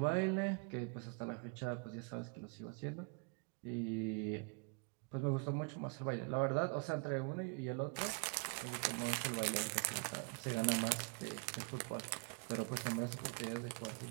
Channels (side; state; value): left; quieter; 34.3 dB